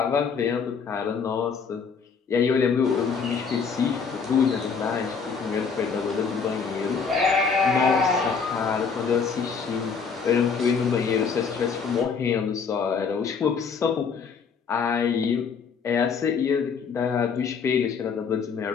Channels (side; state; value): right; quieter; 5.8 dB